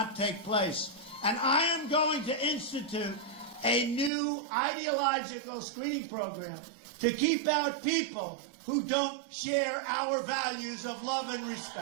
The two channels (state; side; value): drops out; left; at 4.1 s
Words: take place. And I am going to institute a new ideological screening program to keep out people who don't share our values of love and